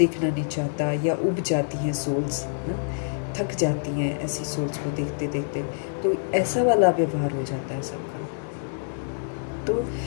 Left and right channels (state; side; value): silent; right; 59 dB below the other